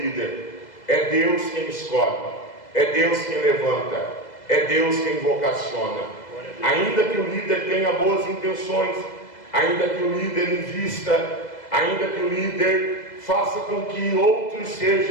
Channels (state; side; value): late; right; 2.0 ms